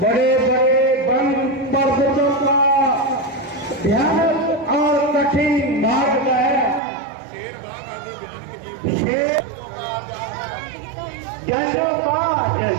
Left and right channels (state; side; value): drops out; left; at 6.8 s